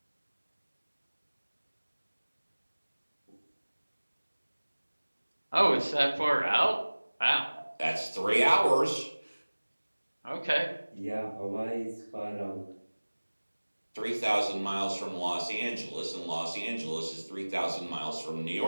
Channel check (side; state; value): both; inverted; correlation -1.00